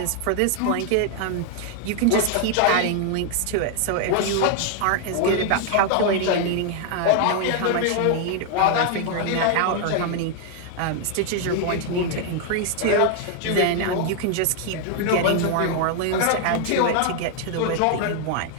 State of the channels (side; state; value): both; different; correlation 0.00